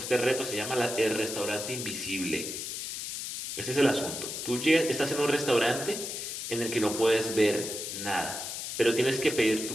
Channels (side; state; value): left; noise; hiss, 6 dB below the sound